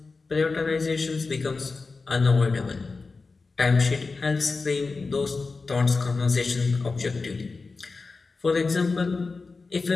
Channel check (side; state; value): right; quieter; 4.1 dB